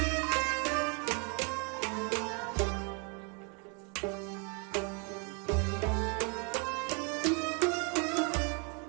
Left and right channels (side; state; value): left; quieter; 35.4 dB